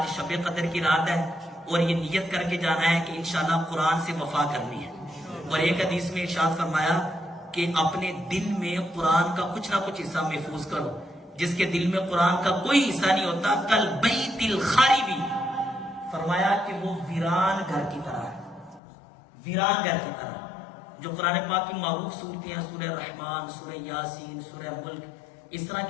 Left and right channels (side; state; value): right; drops out; at 18.8 s